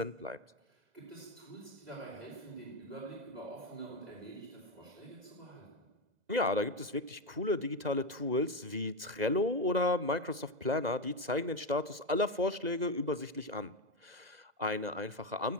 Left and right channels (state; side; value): late; left; 2.0 ms